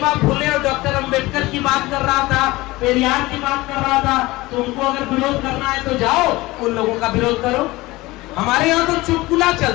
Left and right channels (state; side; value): quieter; right; 20.2 dB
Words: फुले और डॉक्टर अंबेडकर की बात कर रहा था, पेरियार की बात कर रहा था। तो उनको अगर विरोध करना है तो जाओ उन लोगों का विरोध करो। हमारे यहाँ तो चुटकुला